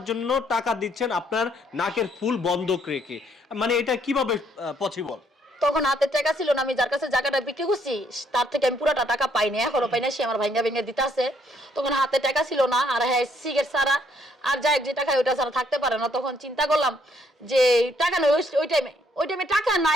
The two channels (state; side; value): normal; both; correlation 0.68